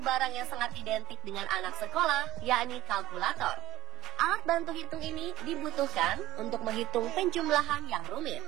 barang yang sangat identik dengan anak sekolah yakni kalkulator. Alat bantu hitung ini dibutuhkan untuk menghitung penjumlahan yang rumit.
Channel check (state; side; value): quieter; left; 16.0 dB